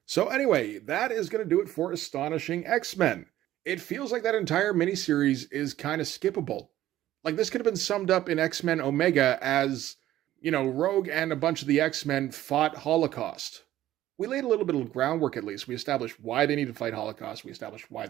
So anyway, that is going to do it for Astonishing X-Men. It feels like that entire miniseries is kind of skippable. Like this could have been summed up in X-Men Omega as, you know, Rogue and a bunch of the X-Men fought Holocaust. We laid a little bit of groundwork at least. We established why they need to fight Holocaust. We established why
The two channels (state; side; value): quieter; left; 13.9 dB